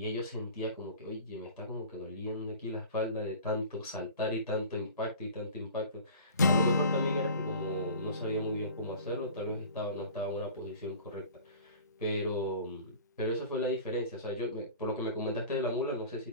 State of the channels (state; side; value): inverted; both; correlation -0.41